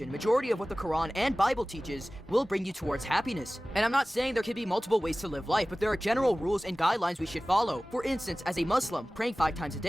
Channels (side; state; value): both; normal; correlation 0.98